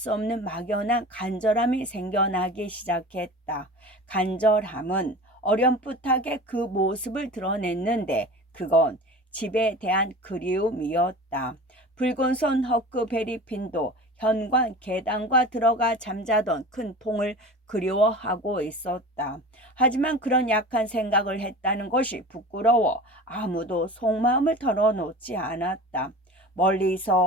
없는 막연한 간절함이 생겨나기 시작했다. 간절함은 어렴풋하게 그 모습을 드러냈는데 그건 집에 대한 그리움이었다. 붉은 손 허크베리핀도 현관 계단과 들어가 잠자던 큰 통을 그리워하고 있었다. 하지만 그런 약한 생각을 했다는 것이 부끄러워 아무도 속마음을 털어놓지 않았다.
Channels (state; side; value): normal; both; correlation 0.36